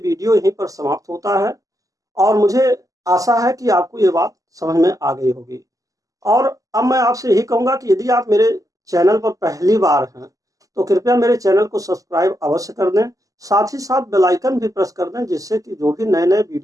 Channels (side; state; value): left; late; 0.17 ms